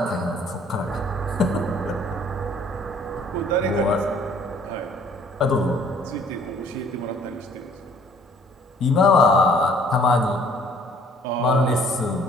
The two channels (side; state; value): both; normal; correlation 0.58